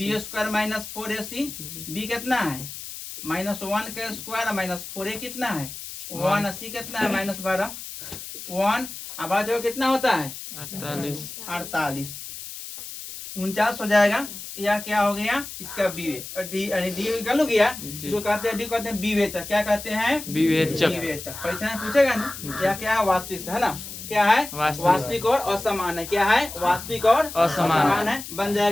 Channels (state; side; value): noise; left; hiss, 11 dB below the sound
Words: square minus 4ac। B कितना है -1 का स्क्वायर माइनस 4a कितना है 1 सी कितना है -12 1 अब आ जाओ कितना होता है 48 49 हो जाएगा। या क्या हो गया इसका बी वे डी यानी डी निकल गया जो कहते हैं डी कहते हैं विवेचक क्या कहते हैं विवेचक विवेचक। परीक्षा में पूछेगा ना क्या क्या है वास्तविक है ना क्या है वास्तविक और असमान है क्या है वास्तविक और असमान है बन